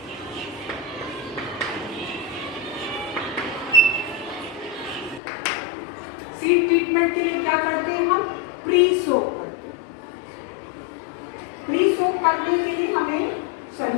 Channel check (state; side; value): drops out; right; at 5.2 s